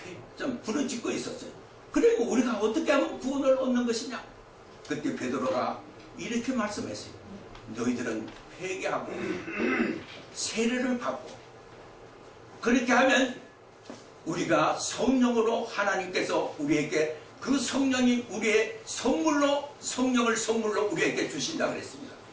좀 부르짖고 있었어요. 그리고 우리가 어떻게 하면 구원을 얻는 것이냐. 그때 베드로가 이렇게 말씀했어요. 너희들은 회개하고 세례를 받고 그렇게 하면 우리가 성령으로, 하나님께서 우리에게 그 성령이 우리의 선물로, 성령을 선물로 우리에게 주신다 그랬습니다.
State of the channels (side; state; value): both; identical; correlation 1.00